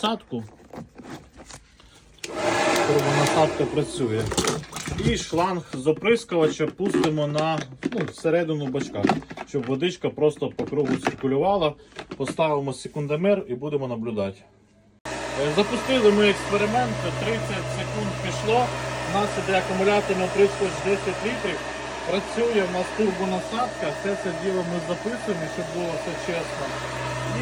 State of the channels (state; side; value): identical; both; correlation 1.00